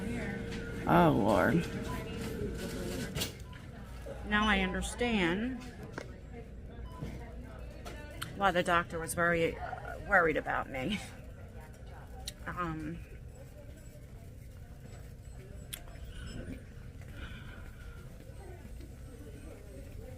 oh Lord. Now I understand why the doctor was very worried about me.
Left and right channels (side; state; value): both; identical; correlation 1.00